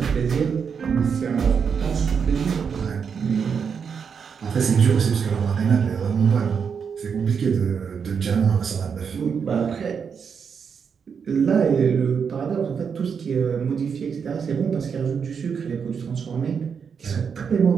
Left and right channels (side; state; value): left; quieter; 6.5 dB